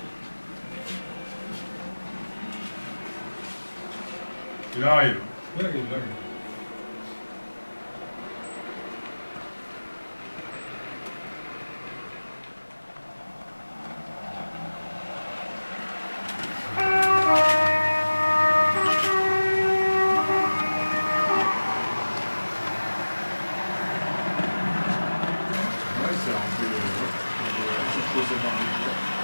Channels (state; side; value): inverted; both; correlation -1.00